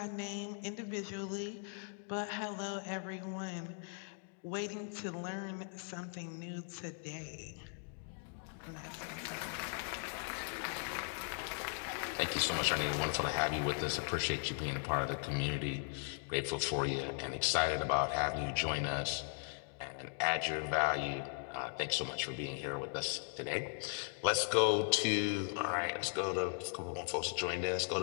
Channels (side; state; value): right; silent; 52 dB below the other